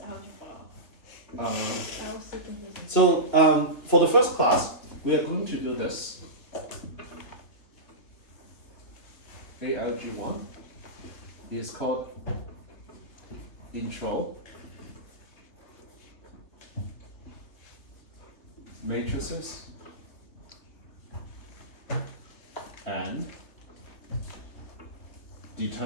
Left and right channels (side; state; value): right; late; 3.3 ms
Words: algebra. I was so confused. So for the first class, we are going to do this. ALG1 is called Intro, Matrices, and